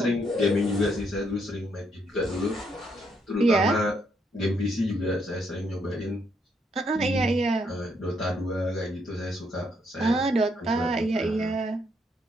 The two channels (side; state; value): both; normal; correlation 0.74